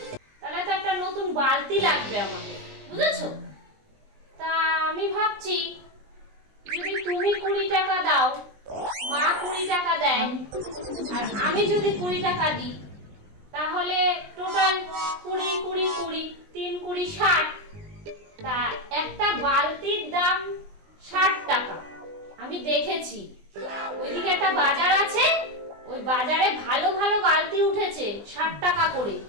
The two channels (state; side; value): late; left; 20 ms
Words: তাহলে তো একটা নতুন বালতি লাগবে আমাদের, বুঝেছো? তা আমি ভাবছি যদি তুমি 20 টাকা দাও, মা 20 টাকা দেয়, আর আমি যদি 20 টাকা দিই, তাহলে টোটাল 20 20 20 3 20 60। তা একটা বালতির দাম 60 টাকা। আমি দেখেছি ওইদিকে একটা বাজার আছে, ওই বাজারে ভালো ভালো বালতি উঠেছে 60 টাকা করে।